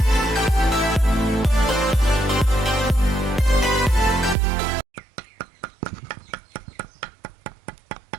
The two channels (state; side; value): drops out; left; at 4.4 s